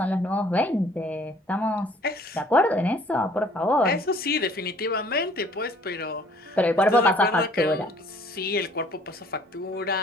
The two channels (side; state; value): both; normal; correlation 0.57